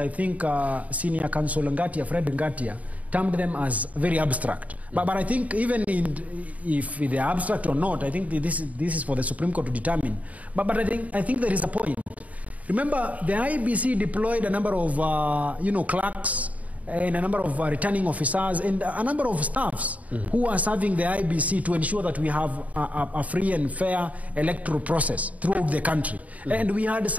think Senior Counsel Ngatia, Fred Ngatia, termed them as very abstract. But I think even if they are abstract or not, I think this is for the Supreme Court to determine. But I think there is a point. Remember, the IBC deployed a number of clerks and a number of returning officers and a number of staffs who are serving the IBC to ensure that we have a free and fair electoral process throughout the country. And we had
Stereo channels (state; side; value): late; left; 0.070 ms